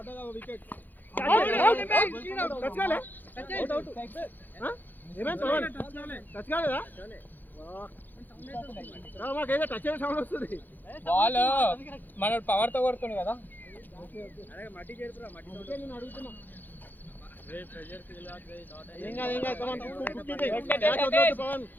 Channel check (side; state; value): right; late; 0.086 ms